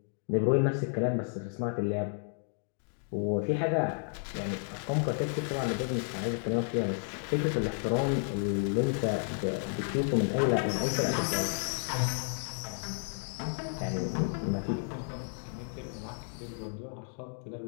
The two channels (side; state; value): right; silent; 56 dB below the other